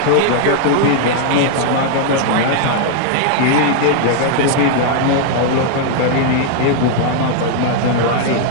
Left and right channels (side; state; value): both; different; correlation -0.01